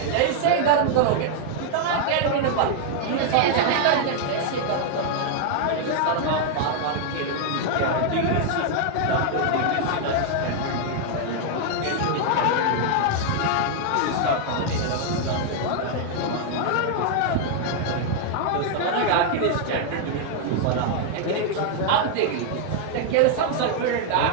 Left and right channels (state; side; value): different; both; correlation 0.00